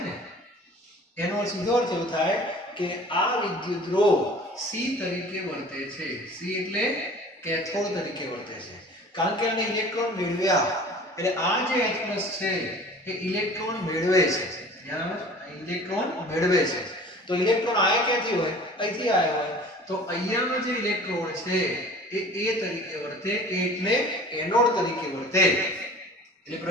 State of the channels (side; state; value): both; normal; correlation 0.45